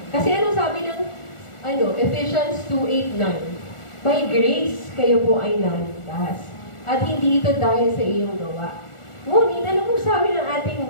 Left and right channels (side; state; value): right; late; 1.4 ms